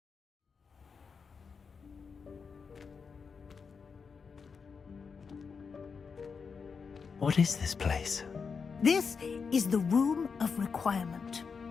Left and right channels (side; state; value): right; quieter; 5.5 dB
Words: What is this place? This is the Room of Requirement.